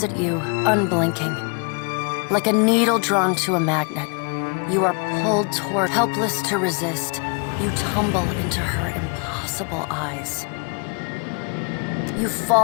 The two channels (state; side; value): quieter; right; 36.0 dB